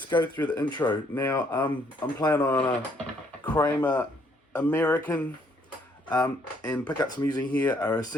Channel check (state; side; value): normal; both; correlation 0.68